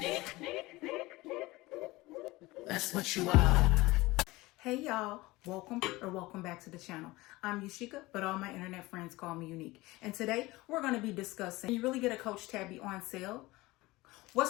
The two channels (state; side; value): quieter; right; 20.4 dB